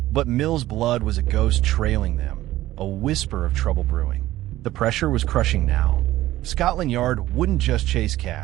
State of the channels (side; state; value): left; quieter; 15.4 dB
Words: But Mills' blood was a ghost trailing them, a whisper of trouble brewing. The pressure was crushing now. Scotland Yard wouldn't just chase